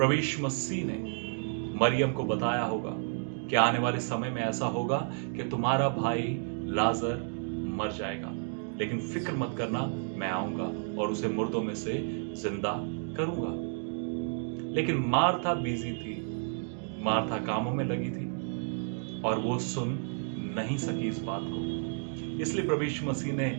यीशु मसीह ने मरियम को बताया होगा कि आने वाले समय में ऐसा होगा कि तुम्हारा भाई लाजर मर जाएगा, लेकिन फिक्र मत करना, मैं आऊंगा और उसे मुर्दों में से जिंदा करूंगा। लेकिन मार्था बिजी थी, मार्था कामों में लगी थी और वो सुन नहीं सकी इस बात को। इसलिए प्रभु यीशु मसीह ने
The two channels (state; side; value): silent; left; 55 dB below the other